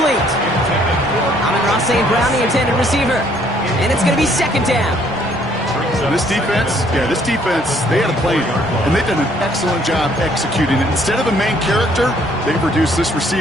Amon-Ra St. Brown, the intended receiver. And it's going to be second down. This defense, they had a plan. And they've done an excellent job executing it. Instead of a main character, they've reduced this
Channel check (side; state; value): both; normal; correlation 0.64